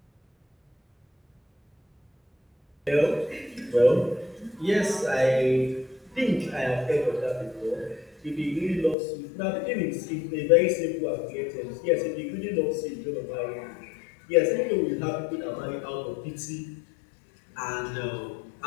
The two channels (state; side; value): drops out; right; at 9.0 s